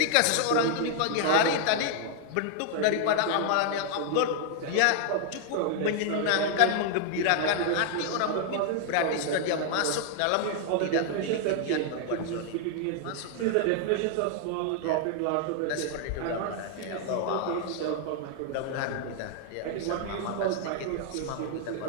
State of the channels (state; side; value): different; both; correlation 0.00